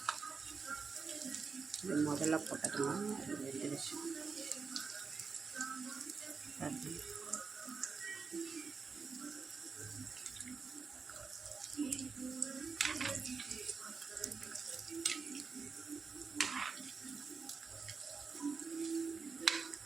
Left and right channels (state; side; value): quieter; left; 5.1 dB